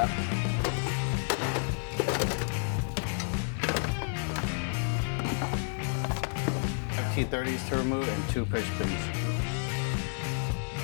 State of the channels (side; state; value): right; silent; digital silence